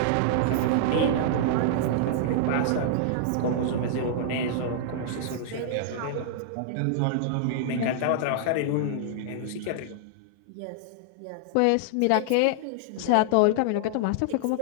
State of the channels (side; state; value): both; different; correlation -0.01